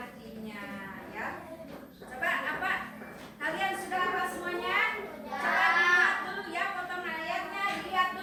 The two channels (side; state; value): both; identical; correlation 1.00